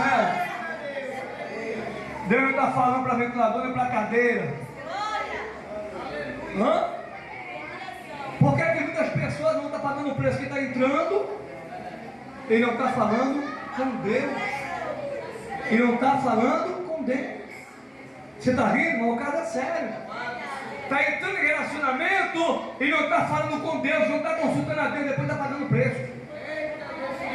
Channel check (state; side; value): identical; both; correlation 1.00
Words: Deus está falando para ventilador e para cadeira. Hã? Por que que muitas pessoas não estão pagando o preço que está entrando? Ele não está falando com Deus. Ele não está falando com Deus. Você está rindo? Mas o caso é sério. Está entrando em relacionamento e não está falando com Deus, não está consultando a Deus, depois está pagando o preço.